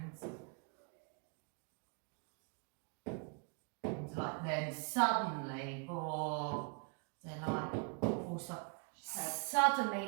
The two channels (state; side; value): quieter; left; 37.1 dB